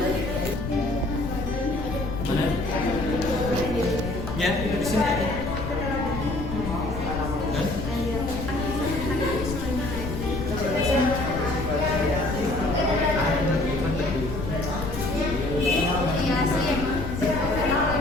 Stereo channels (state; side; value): noise; left; rumble, 6 dB below the sound